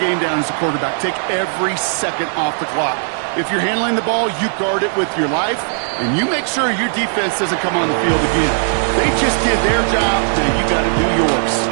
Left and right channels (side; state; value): left; silent; digital silence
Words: down as a quarterback. Take every second off the clock. If you're handling the ball, you guard it with your life, and you make sure your defense doesn't come on the field again. They just did their job, now you got to do yours.